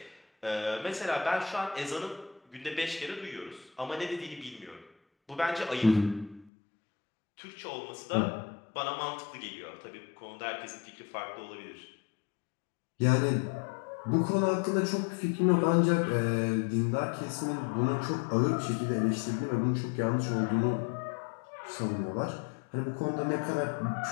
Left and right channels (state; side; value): drops out; right; at 6.5 s